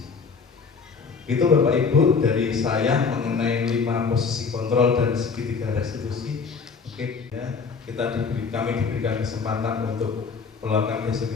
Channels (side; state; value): right; quieter; 5.2 dB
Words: Itu Bapak Ibu dari saya mengenai 5 posisi kontrol dan segitiga restitusi. Oke ya, kami diberikan kesempatan untuk melakukan